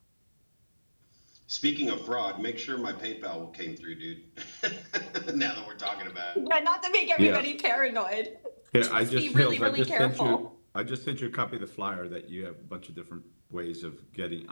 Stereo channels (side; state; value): both; inverted; correlation -1.00